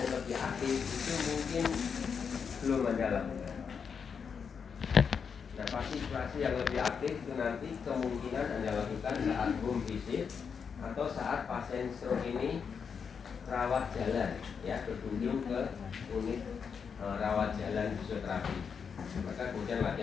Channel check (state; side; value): quieter; right; 6.4 dB